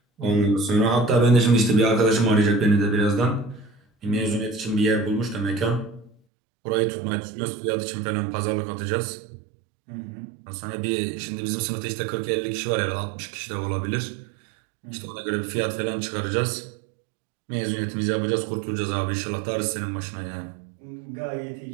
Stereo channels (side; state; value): left; drops out; at 6.2 s